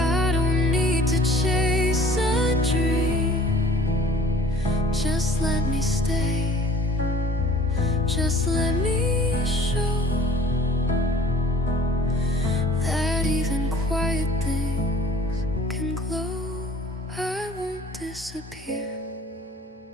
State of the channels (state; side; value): normal; both; correlation 0.50